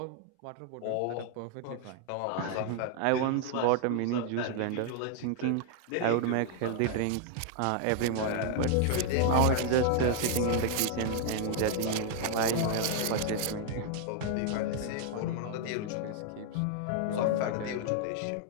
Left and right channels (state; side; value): different; both; correlation 0.00